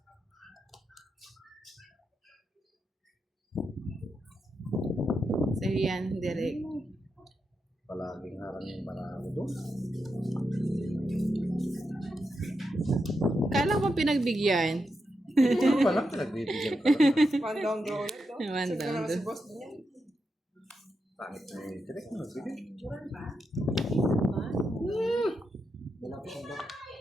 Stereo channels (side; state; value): both; normal; correlation 0.86